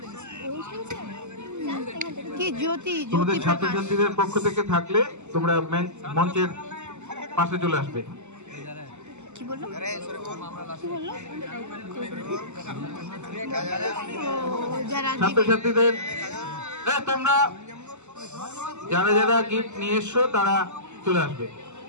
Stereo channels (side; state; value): left; late; 0.83 ms